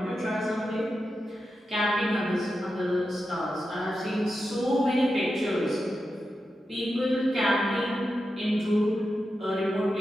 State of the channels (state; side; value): normal; both; correlation 0.89